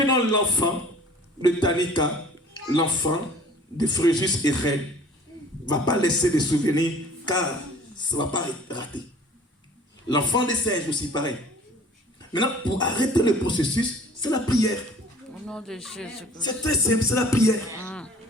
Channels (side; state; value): both; normal; correlation 0.49